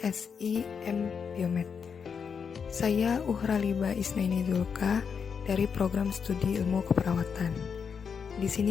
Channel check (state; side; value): quieter; right; 6.4 dB